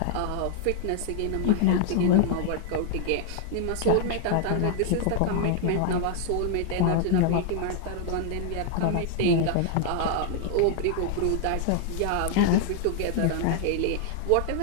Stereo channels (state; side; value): different; both; correlation 0.00